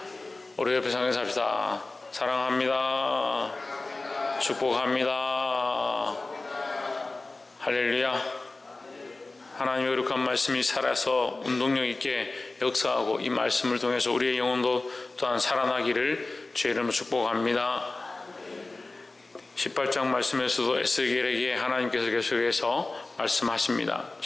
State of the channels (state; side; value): quieter; right; 3.3 dB